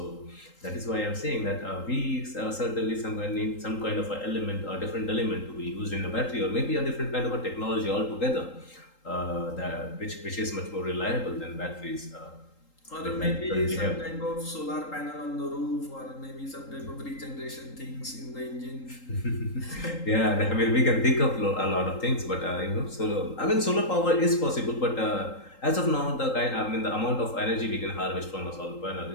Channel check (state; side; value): late; right; 3.8 ms